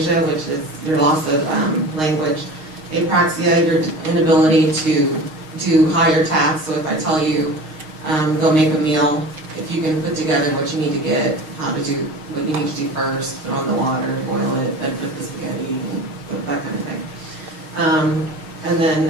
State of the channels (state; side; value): late; left; 6.4 ms